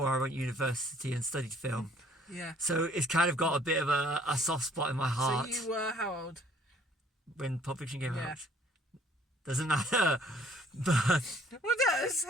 I went to university and studied film. Yeah. So it's kind of got a bit of a soft spot in my heart. So you were how old? When Pulp Fiction came out. Doesn't matter. But Well, it does.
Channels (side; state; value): both; normal; correlation 0.59